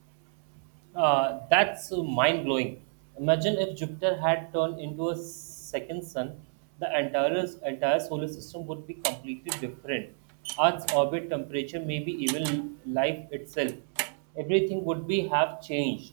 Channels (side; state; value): left; silent; 58 dB below the other